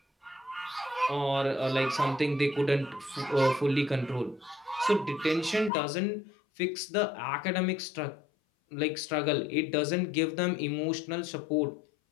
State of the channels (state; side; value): drops out; right; at 5.7 s